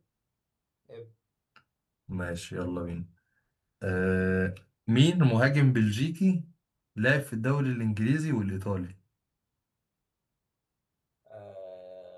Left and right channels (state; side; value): identical; both; correlation 1.00